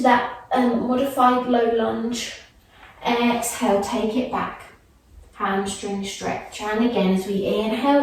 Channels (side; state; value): both; identical; correlation 1.00